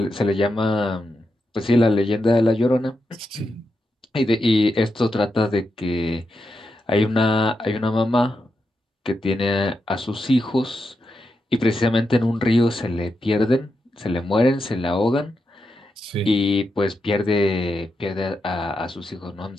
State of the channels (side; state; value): both; normal; correlation 0.86